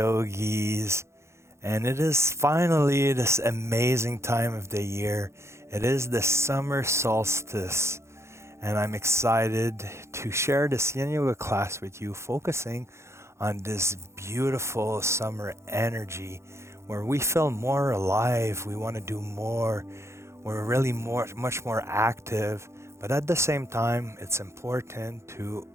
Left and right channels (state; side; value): late; left; 0.13 ms